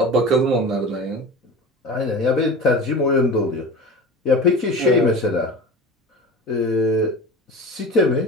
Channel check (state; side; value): normal; both; correlation 0.32